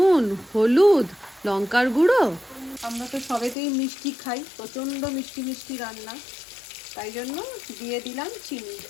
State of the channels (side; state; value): right; drops out; at 3.6 s